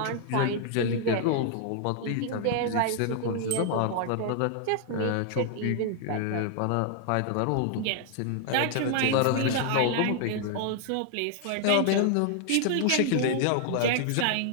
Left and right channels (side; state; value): both; different; correlation 0.00